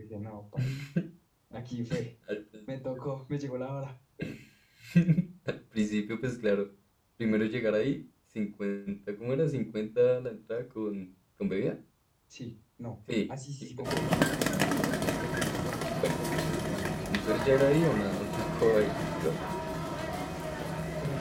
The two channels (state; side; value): identical; both; correlation 1.00